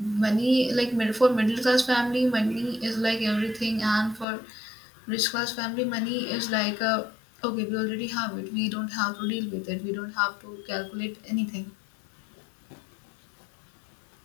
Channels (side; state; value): right; drops out; at 4.2 s